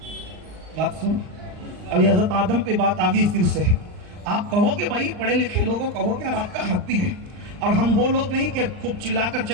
بات سن، ابھی حضرت آدم پہ بات آ گئی پھر سے۔ آپ کہو کہ بھائی پڑھے لکھے لوگوں کہو کہ یار آپ کا حق بھی ہے، اور ہم وہ لوگ نہیں کہ خوب چلا کر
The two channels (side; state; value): left; late; 39 ms